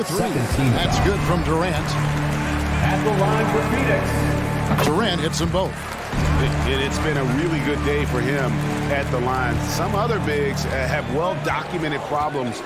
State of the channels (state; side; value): identical; both; correlation 1.00